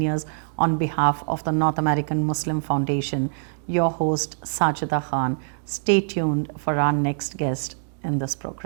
on behalf of the North American Muslim Foundation. Your host, Sajida Khan. Stay tuned for our next guest in this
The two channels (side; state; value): left; silent; 63 dB below the other